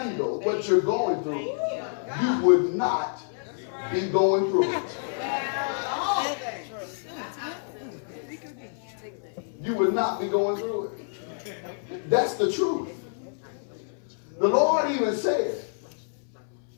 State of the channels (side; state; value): right; silent; 60 dB below the other